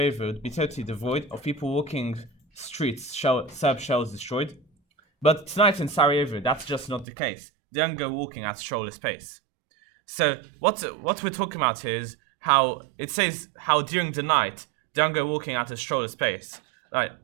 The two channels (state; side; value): drops out; left; at 7.1 s